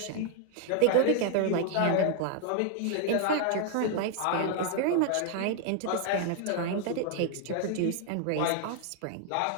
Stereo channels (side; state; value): both; different; correlation 0.00